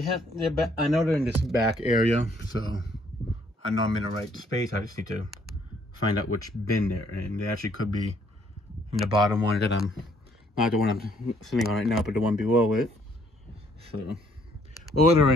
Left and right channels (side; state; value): both; normal; correlation 0.66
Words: I know they're in this back area, so I know I'm in the right space. I just need to find out which bin they're in. They actually could be in the bottom one that I'm not the one I'm sitting on right now, but the one below it. So, or they're